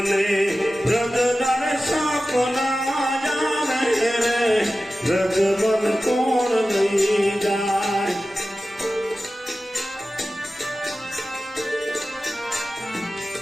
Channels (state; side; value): normal; both; correlation 0.95